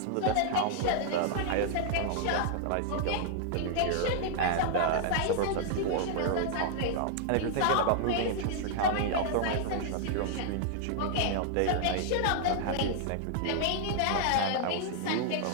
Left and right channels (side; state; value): both; different; correlation -0.01